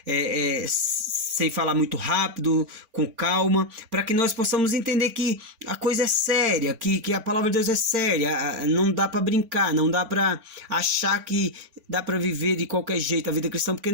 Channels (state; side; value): late; left; 3.5 ms